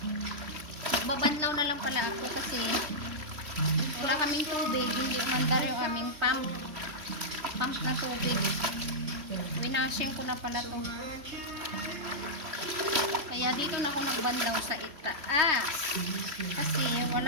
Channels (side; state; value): left; late; 3.1 ms